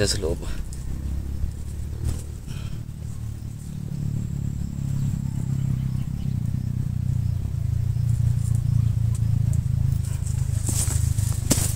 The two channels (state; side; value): identical; both; correlation 1.00